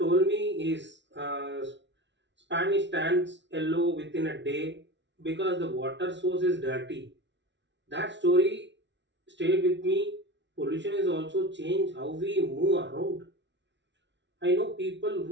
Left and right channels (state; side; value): late; left; 0.52 ms